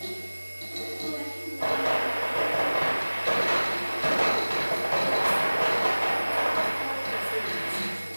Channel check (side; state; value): both; inverted; correlation -1.00